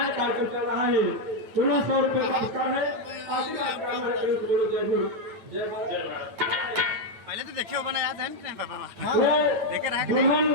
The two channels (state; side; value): late; left; 9.4 ms